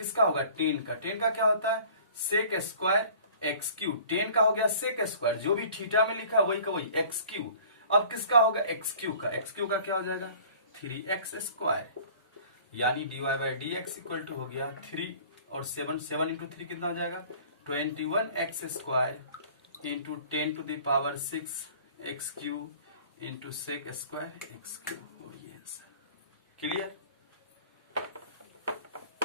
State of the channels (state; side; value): inverted; both; correlation -0.48